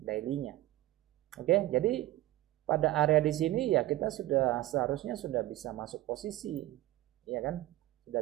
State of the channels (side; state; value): left; quieter; 16.4 dB